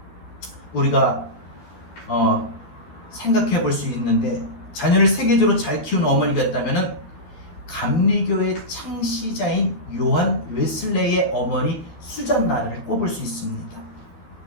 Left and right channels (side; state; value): right; late; 13 ms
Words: 우리가 생각해 볼 수 있는데, 자녀를 세계적으로 잘 키운 어머니가 있다면 감리교의 창시자인 요한 웨슬레이의 어머니 수잔나를 꼽을 수 있습니다.